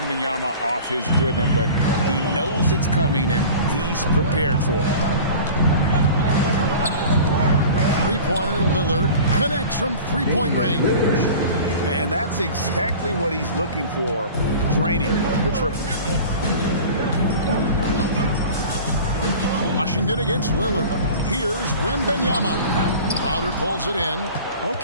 off his rhythm, but he knows it's coming and he's prepared for it. Three-pointer Lillard connects from three-point range. And that's exactly what he's looking for, draining the triple. Washington against Lillard. Here's Wembanyama. Crowder pulls it in.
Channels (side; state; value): both; inverted; correlation -0.39